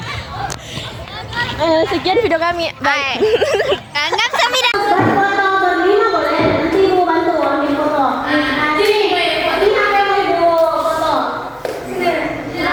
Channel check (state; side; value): identical; both; correlation 1.00